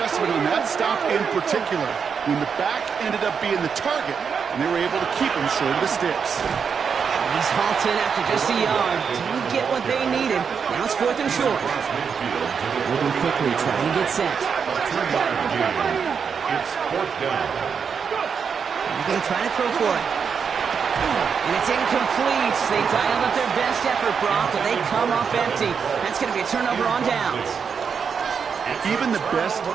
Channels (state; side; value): quieter; left; 6.4 dB